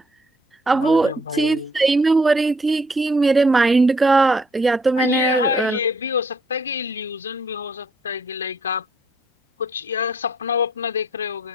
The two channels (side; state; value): both; normal; correlation 0.67